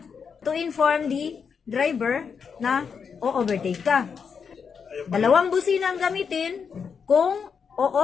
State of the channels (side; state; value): right; quieter; 6.3 dB